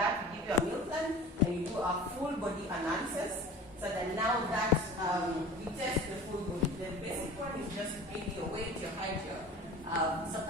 we give you a meal plan, and you do a full body analysis, so that now that we test the full body. The basic one is just maybe your weight, your height, your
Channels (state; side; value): normal; both; correlation 0.39